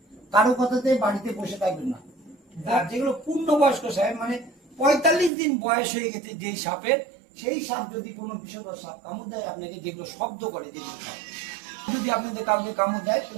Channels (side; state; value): left; drops out; at 5.3 s